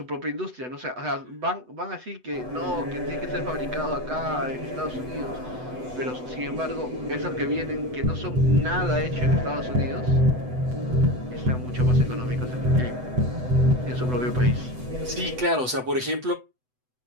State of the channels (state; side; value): late; left; 8.0 ms